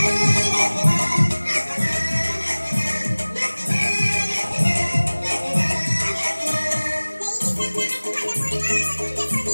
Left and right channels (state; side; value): inverted; both; correlation -1.00